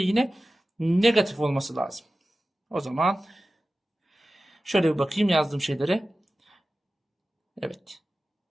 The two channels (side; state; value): both; normal; correlation 0.95